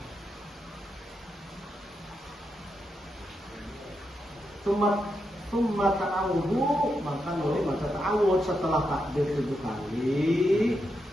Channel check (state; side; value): normal; both; correlation 0.84